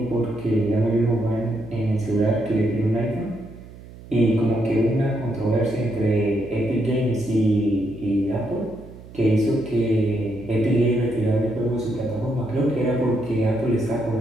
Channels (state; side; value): noise; right; hum, 18 dB below the sound